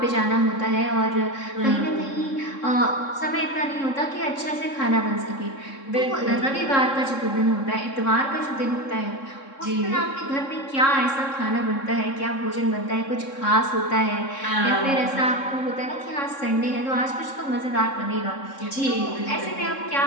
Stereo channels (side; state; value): right; late; 3.7 ms